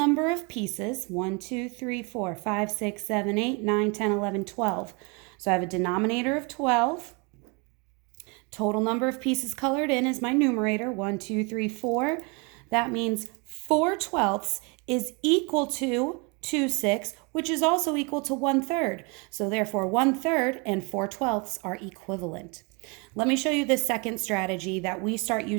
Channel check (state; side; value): quieter; left; 31.0 dB